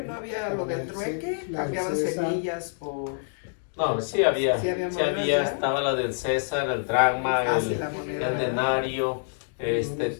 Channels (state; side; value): silent; right; digital silence